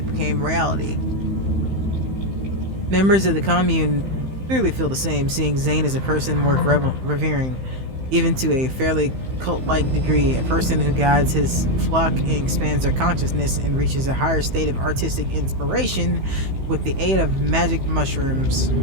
became reality. Members of the commune clearly feel the same, seeing Zane as a person worth revering, even to a fairly cult-like degree, a person who guides his flock and expands their consciousness and reaches a higher state of artistic inspiration with the aid of magic mushrooms.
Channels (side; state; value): left; late; 15 ms